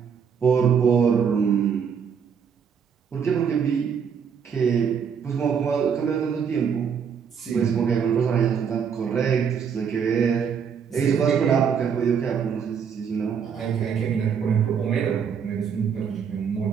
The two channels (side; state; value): left; quieter; 7.1 dB